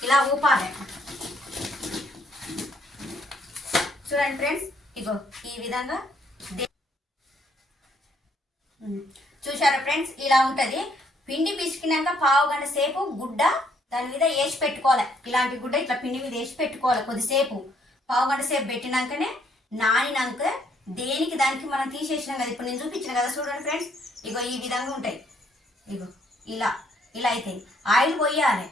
ఇలా ఊపాలి. చూడండి ఫ్రెండ్స్, ఇగో ఈ విధంగా చూసారా ఫ్రెండ్స్, ఇలా ఉంటుంది. పిండి పిసికినాక పావు గంట సేపు గుడ్డ దాని మీద వేసి పెట్టుకోవాలి. ఇలాంటి గుడ్డ ఇట్లా పిండి మీద వేసి పెట్టుకోవాలి. కొద్దిసేపు పావు గంట సేపు పెట్టినాకనే నానినాక దేనికి దానికి మనం తీసేసినాం కదా, ఇప్పుడు నేను చూపించిన కదా. చూడండి ఫ్రెండ్స్, ఇగో ఈ విధంగా ఉంటాయి. ఇగో ఇలా ఇలా అయితే ఆయిల్ పోయాలి,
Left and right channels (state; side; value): normal; both; correlation 0.68